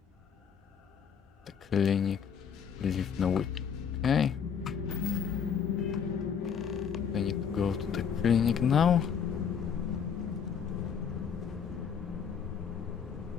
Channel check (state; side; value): quieter; right; 7.2 dB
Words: clinic. Leave no week. Okay. I need to go to the clinic now.